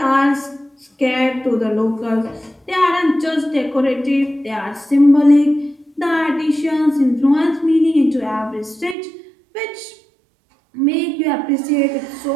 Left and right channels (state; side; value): drops out; left; at 9.0 s